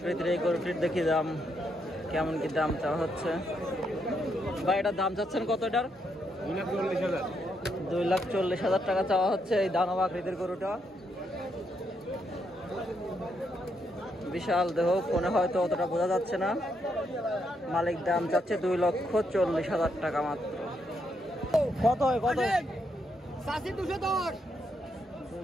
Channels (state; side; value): normal; both; correlation 0.78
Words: এই গরুটির দেখি দাম কেমন কি দাম চাওয়া হচ্ছে। ভাই এটার দাম চাচ্ছেন কত এটার? 2,40,000। 2,40,000 টাকা চাওয়া হচ্ছে এই দানব আকৃতির গরুটা। বিশাল দেহ, ফোনে হয়তো অতটা বোঝা যাচ্ছে না। মালিক দাম চাচ্ছে 2,40,000 টাকা মাত্র। কত হয় কত? 210